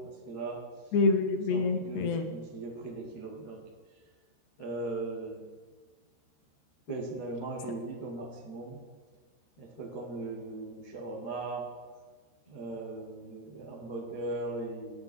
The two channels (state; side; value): late; right; 13 ms